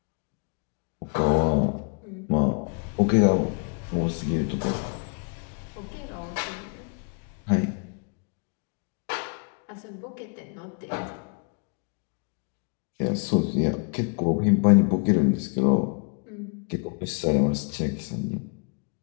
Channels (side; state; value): right; quieter; 37.2 dB